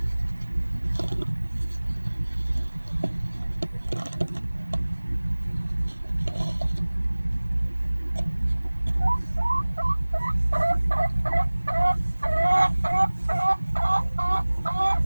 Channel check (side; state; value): both; inverted; correlation -1.00